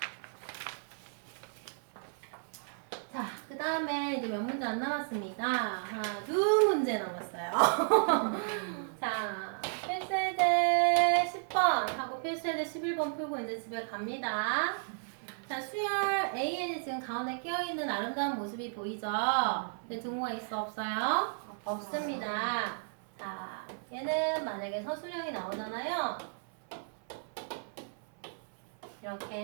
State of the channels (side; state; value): left; silent; 55 dB below the other